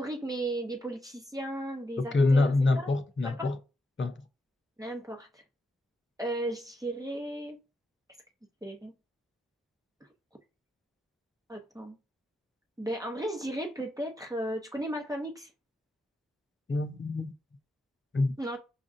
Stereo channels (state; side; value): normal; both; correlation 0.84